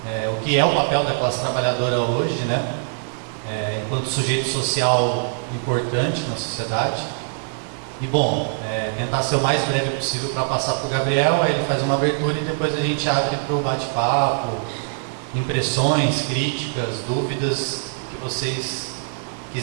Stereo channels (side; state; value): left; silent; digital silence